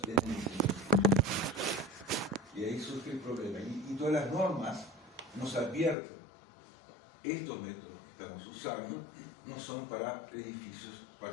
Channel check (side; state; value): right; drops out; at 6.0 s